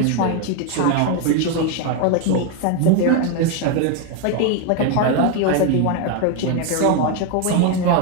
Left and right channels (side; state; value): both; different; correlation 0.01